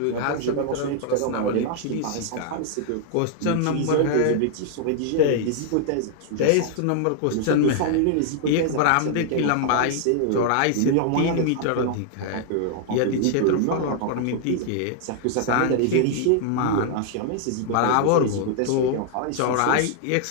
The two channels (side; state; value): both; different; correlation -0.01